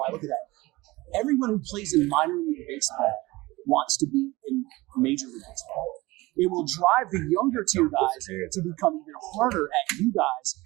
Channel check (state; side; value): quieter; left; 20.7 dB